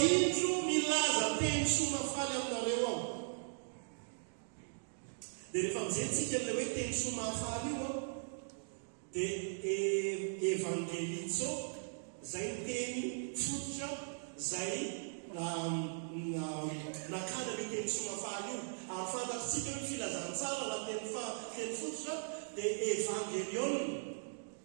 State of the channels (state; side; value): silent; left; digital silence